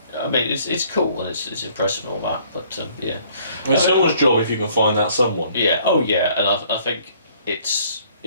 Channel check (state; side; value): inverted; both; correlation -0.60